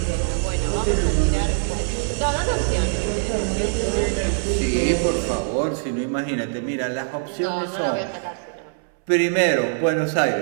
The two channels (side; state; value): left; silent; 63 dB below the other